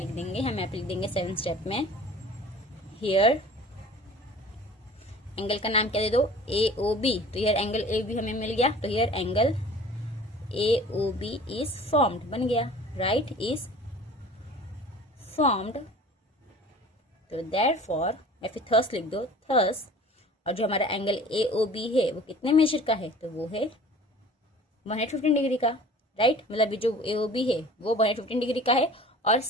देंगे, हम यहाँ पे लिख देंगे 7th स्टेप में, हियर एंगल का नाम क्या दे दो, ए ओ बी। तो हियर एंगल ए बी हमें मिल गया, तो here angle A O B is formed, बन गया, राइट, इज फॉर्म्ड। तो देयरफॉर या फिर थस लिख दो, थस। और जो हमारा एंगल ए ओ बी है वो कितने मेजर का है, तो वो है 115 डिग्री का, राइट। मतलब जो ए ओ बी है वो 115 डिग्री का है। और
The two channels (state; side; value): normal; both; correlation 0.45